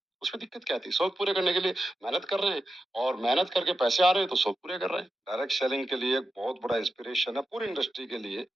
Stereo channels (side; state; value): both; normal; correlation 0.90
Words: उसमें दिक्कत क्या थी? शौक पूरे करने के लिए मेहनत कर रहे हैं और मेहनत करके पैसे आ रहे हैं, तो शौक पूरे कर रहे हैं। डायरेक्ट सेलिंग के लिए एक बहुत बड़ा इंस्पिरेशन है पूरी इंडस्ट्री के लिए